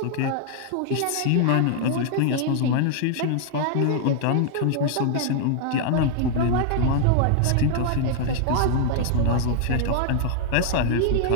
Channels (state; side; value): different; both; correlation -0.01